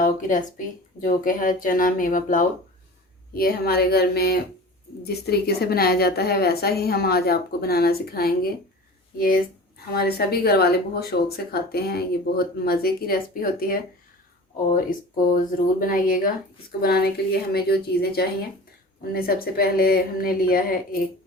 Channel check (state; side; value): normal; both; correlation 0.38